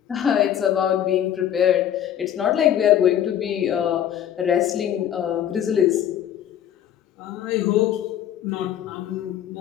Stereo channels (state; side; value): quieter; right; 10.3 dB